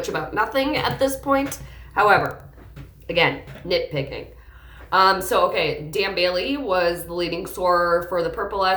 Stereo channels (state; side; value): identical; both; correlation 1.00